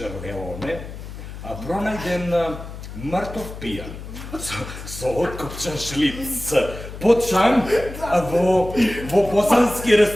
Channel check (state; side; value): noise; left; hum, 11 dB below the sound